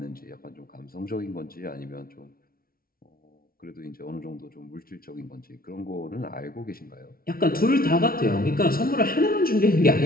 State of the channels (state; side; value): late; right; 0.43 ms